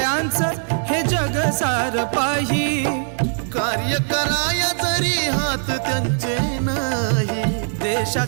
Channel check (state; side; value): silent; left; digital silence